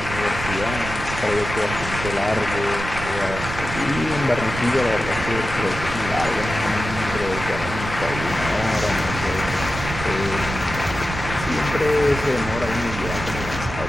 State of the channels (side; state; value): right; noise; rumble, 8 dB below the sound